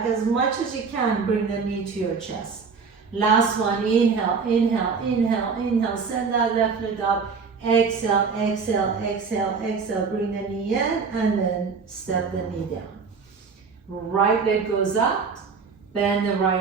as much as you can, bring the knee to your chest. Last one, inhale, inhale, inhale, inhale, send that left leg up, exhale, exhale, exhale, exhale, bring the knee in, and then step the knee down. Right leg goes up, bend the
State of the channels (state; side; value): quieter; left; 5.3 dB